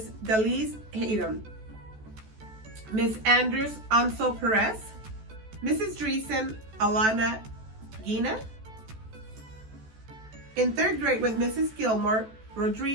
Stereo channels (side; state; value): left; late; 14 ms